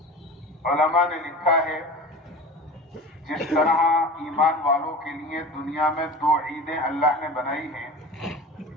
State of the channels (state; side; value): normal; both; correlation 0.34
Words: علماء نے لکھا ہے جس طرح ایمان والوں کے لیے دنیا میں دو عیدیں اللہ نے بنائی ہیں،